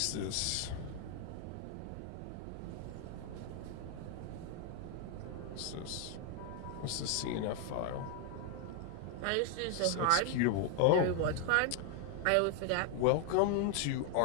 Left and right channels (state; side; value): different; both; correlation 0.01